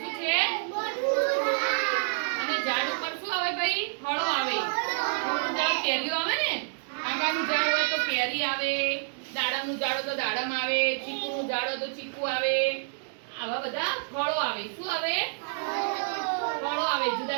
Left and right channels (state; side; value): silent; left; digital silence